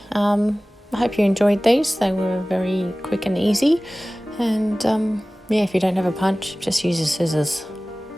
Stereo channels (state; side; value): normal; both; correlation 0.98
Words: I hope you enjoyed these. They were very quick and easy. And yeah, if you don't have a punch, just use your scissors.